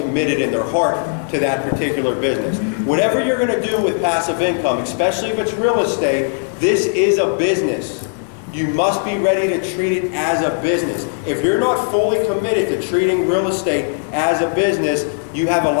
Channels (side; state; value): right; silent; digital silence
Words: in their heart to that particular business. Whatever you're going to do with passive income, especially if it's real estate, this is a business. You must be ready to treat it as a business. If you're not fully committed to treating real estate as a business, you have